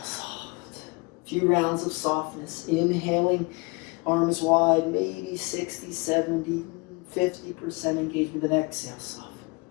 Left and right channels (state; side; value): quieter; right; 28.6 dB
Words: soft. A few rounds of softness. Inhaling, arms wide, maybe 60, 70, 50% engagement. Then exhale, soft.